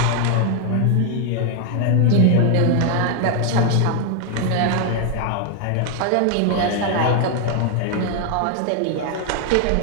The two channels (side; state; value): both; different; correlation 0.00